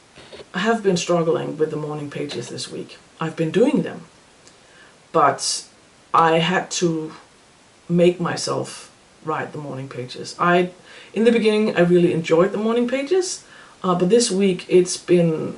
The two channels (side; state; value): both; identical; correlation 1.00